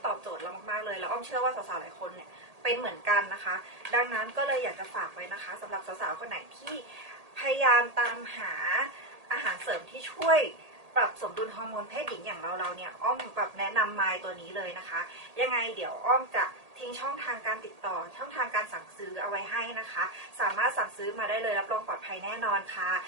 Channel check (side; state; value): left; late; 1.8 ms